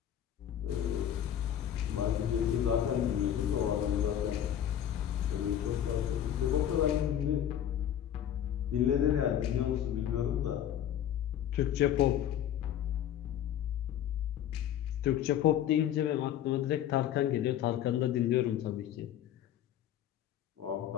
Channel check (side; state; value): right; quieter; 10.5 dB